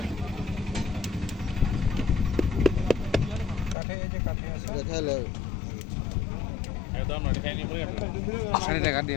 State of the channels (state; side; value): drops out; right; at 3.8 s